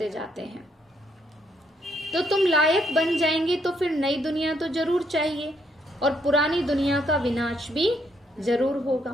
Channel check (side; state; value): both; normal; correlation 0.73